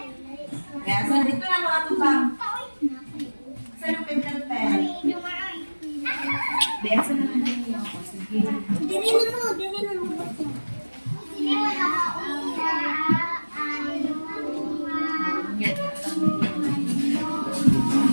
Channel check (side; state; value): both; inverted; correlation -1.00